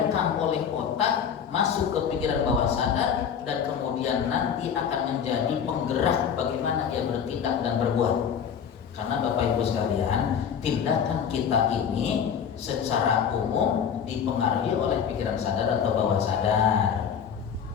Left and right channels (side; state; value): right; quieter; 7.7 dB